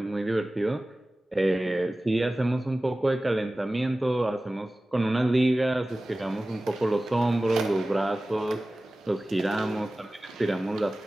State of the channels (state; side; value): normal; both; correlation 0.97